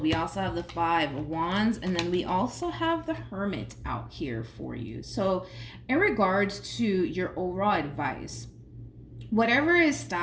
we also have the Five of Wands, and then we also have the Hermit out here for you. So in regards to your overall advice, whatever is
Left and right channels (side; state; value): both; identical; correlation 1.00